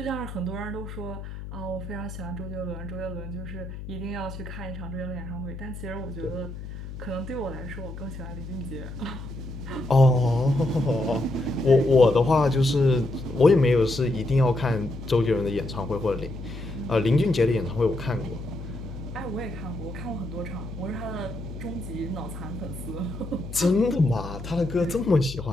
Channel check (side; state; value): left; noise; hum, 10 dB below the sound